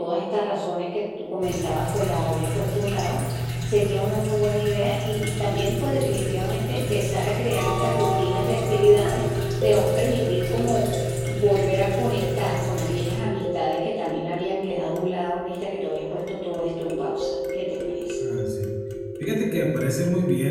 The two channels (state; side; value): identical; both; correlation 1.00